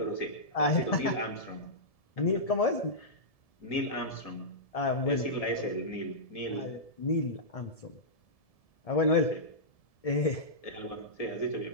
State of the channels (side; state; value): right; late; 1.7 ms